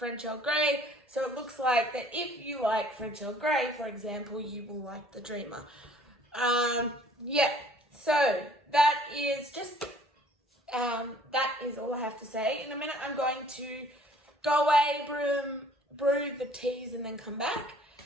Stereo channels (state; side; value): normal; both; correlation 0.56